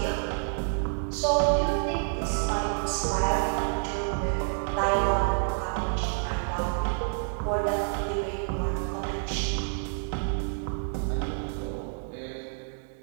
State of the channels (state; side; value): silent; left; digital silence